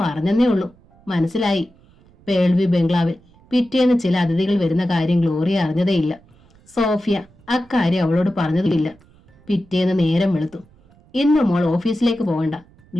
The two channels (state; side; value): noise; right; rumble, 29 dB below the sound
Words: പറഞ്ഞെന്നേ ഉള്ളൂ, മനസ്സിലായി. പേൾവി ബംഗ്ലാവിൽ പിറ്റേന്ന് ചില അതിഥികൾ വരുന്ന കാര്യം ഗ്ലോറിയ അറിഞ്ഞതേയില്ല. സോഫിയ അക്കാര്യം അവളോട് പറഞ്ഞതുമില്ല. പിറ്റേന്ന് നേരം വെളുത്തു. ഇന്ന് മോൾ ഓഫീസിലേക്ക് പോകണ്ട,